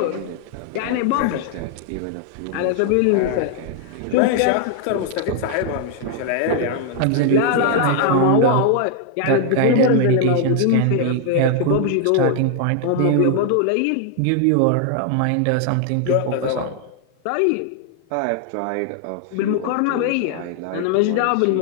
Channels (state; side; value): different; both; correlation 0.00